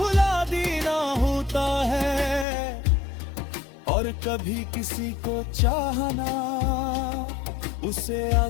देना होता है, और कभी किसी को चाहना उसे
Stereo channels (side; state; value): right; drops out; at 2.5 s